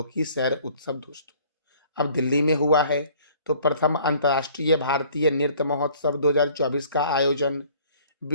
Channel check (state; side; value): inverted; both; correlation -0.55